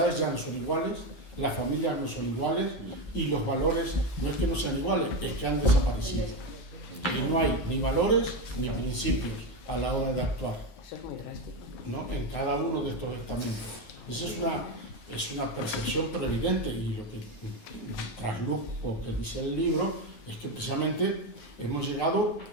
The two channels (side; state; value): right; late; 9.5 ms